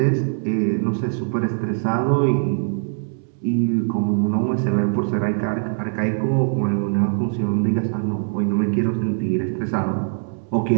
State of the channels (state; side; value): silent; left; 64 dB below the other